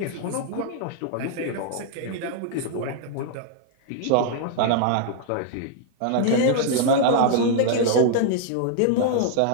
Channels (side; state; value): both; different; correlation -0.01